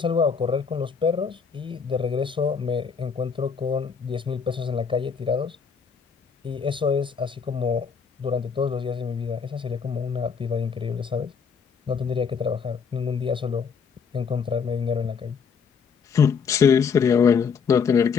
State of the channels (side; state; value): right; quieter; 6.1 dB